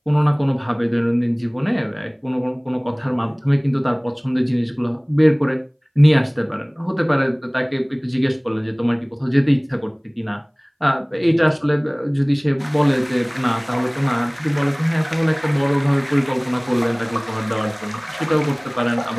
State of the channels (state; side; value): identical; both; correlation 1.00